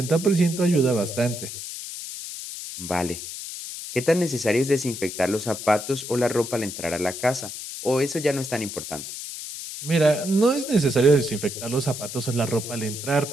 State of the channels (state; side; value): noise; left; hiss, 9 dB below the sound